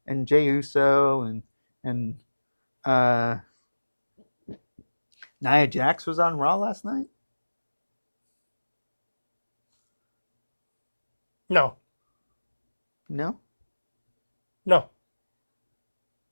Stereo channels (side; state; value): both; inverted; correlation -1.00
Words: and Jey Uso and Nia Jax was on Raw last night. No.